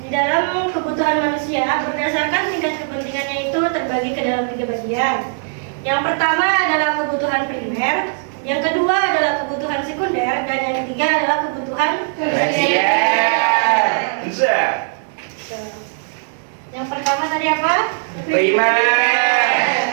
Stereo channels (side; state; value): left; silent; digital silence